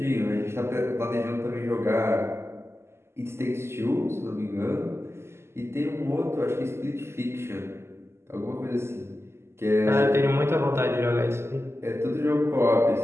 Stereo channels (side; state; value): left; late; 0.12 ms